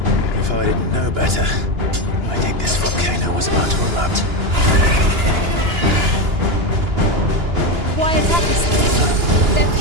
If I didn't know better, I think this volcano was about to erupt. Why attack us then? They're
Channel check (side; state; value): left; late; 2.9 ms